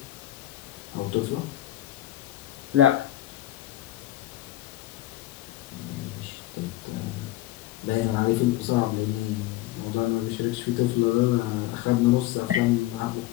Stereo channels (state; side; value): quieter; right; 15.3 dB